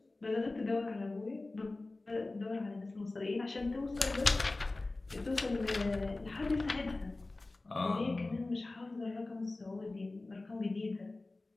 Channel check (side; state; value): right; quieter; 3.1 dB